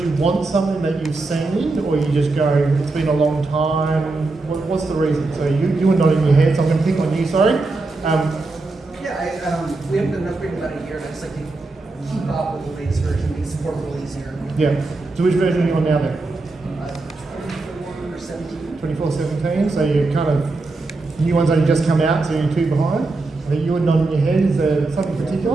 want something that you've seen, or you just go, it's been a long time? What's the reason? So you were nodding your head, so I'm going to pick on you, sorry. We haven't done an upgrade in about a year, and I just like to keep up with the latest version, make support a little easier. Yeah. So which version are you on now then? 24/17. 24/17, so you're kind of, new ones only just come out, so you're 2 behind. I think you were nodding your head, is there something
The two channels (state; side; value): quieter; left; 3.4 dB